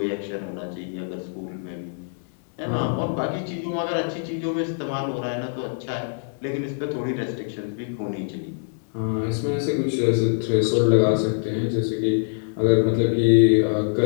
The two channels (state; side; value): silent; right; digital silence